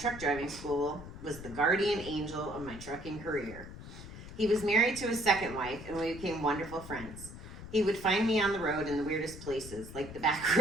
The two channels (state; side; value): noise; left; rumble, 13 dB below the sound